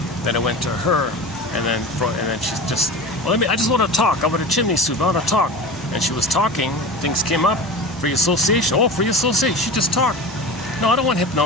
then it went to her, and then she's just, well, I just want to talk. I want a chimney sweep. I want to talk. And she was talking. Things came up. Free association. Oh, free association. She just talked. No, I don't want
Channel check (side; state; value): both; normal; correlation 0.32